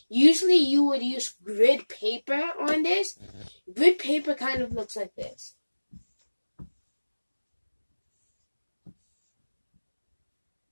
Usually you would use grid paper on this. Grid paper kind of looks like this.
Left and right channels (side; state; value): both; inverted; correlation -1.00